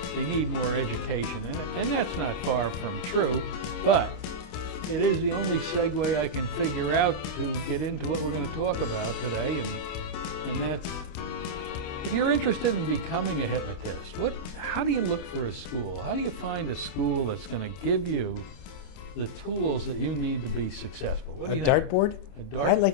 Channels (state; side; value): late; right; 28 ms